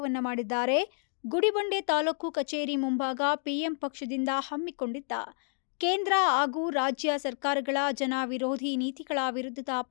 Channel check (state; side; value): silent; right; digital silence